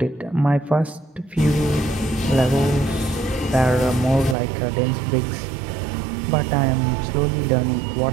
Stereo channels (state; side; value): drops out; left; at 4.4 s